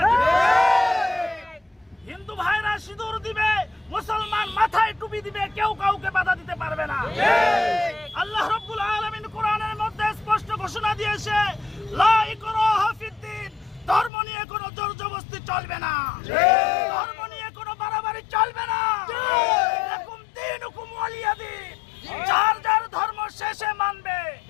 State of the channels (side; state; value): right; drops out; at 14.1 s